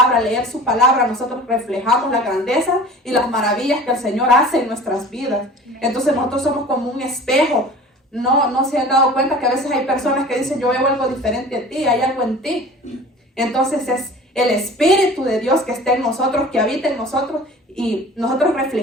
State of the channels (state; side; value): normal; both; correlation 0.42